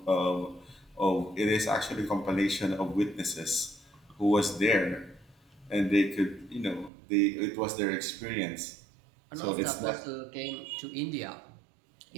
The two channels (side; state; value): left; drops out; at 6.9 s